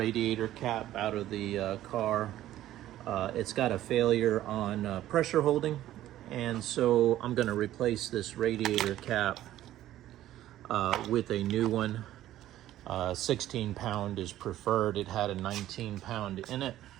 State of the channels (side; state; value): left; quieter; 13.5 dB